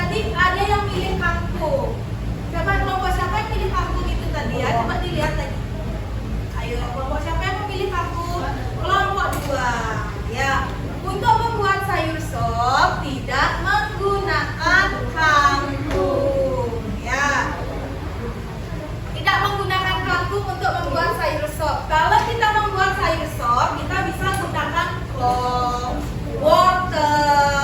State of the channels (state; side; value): identical; both; correlation 1.00